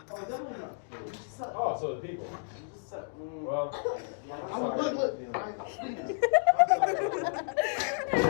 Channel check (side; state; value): right; quieter; 37.0 dB